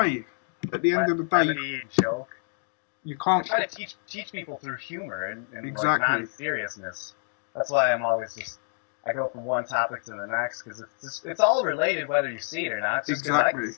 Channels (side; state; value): right; silent; 60 dB below the other